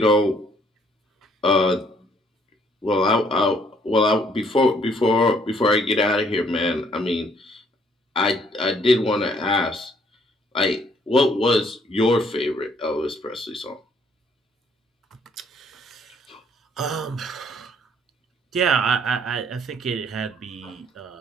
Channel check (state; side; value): normal; both; correlation 0.65